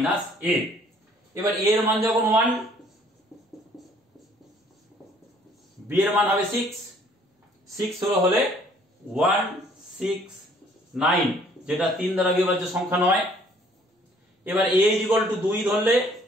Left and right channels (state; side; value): normal; both; correlation 0.59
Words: a। এবার a এর মান যখন 1, b এর মান হবে 6, 6 হলে 1 6 9, যেটা 3 দ্বারা বিভাজ্য সংখ্যা নয়। এবার a = 2 ধরলে